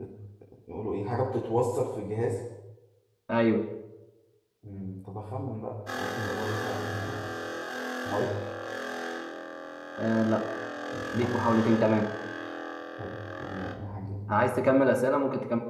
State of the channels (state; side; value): identical; both; correlation 1.00